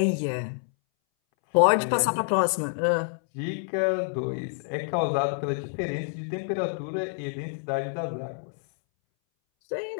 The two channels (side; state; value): right; silent; 60 dB below the other